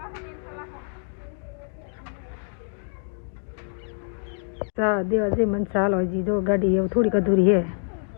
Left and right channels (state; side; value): silent; right; 57 dB below the other